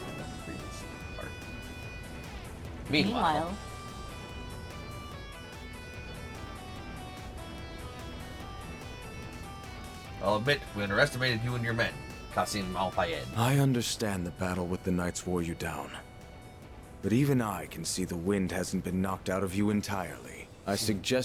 And then freeze part. Meanwhile, I'll admit, we underestimated you and your men, Qasim Al-Fayed. I understand the battle with the Knights wore you down. But even I can see the wind hasn't been knocked out of you entirely. I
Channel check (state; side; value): identical; both; correlation 1.00